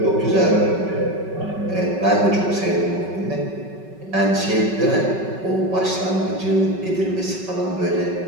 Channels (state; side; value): late; left; 5.3 ms